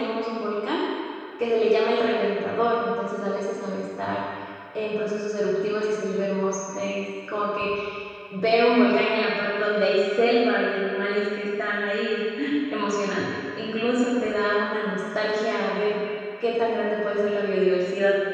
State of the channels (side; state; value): both; identical; correlation 1.00